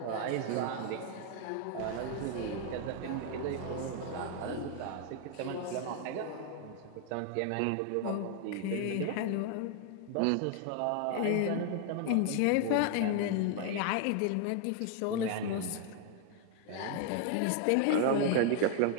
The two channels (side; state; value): both; different; correlation 0.00